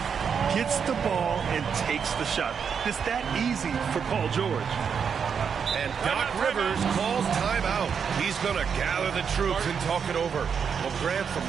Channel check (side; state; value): left; quieter; 6.8 dB